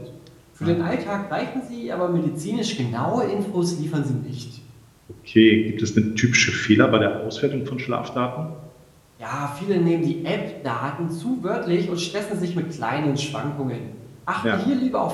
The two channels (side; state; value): both; identical; correlation 1.00